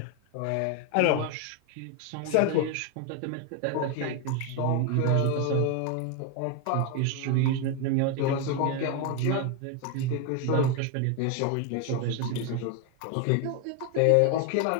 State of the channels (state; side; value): different; both; correlation 0.01